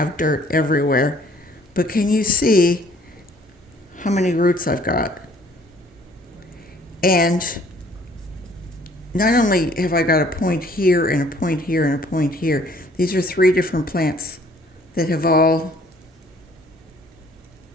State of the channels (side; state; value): both; normal; correlation 0.59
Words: dirt everywhere. But can you see how many roots I've got? And not only have I got a point here and a point here and a point here, these are 3 different plants that are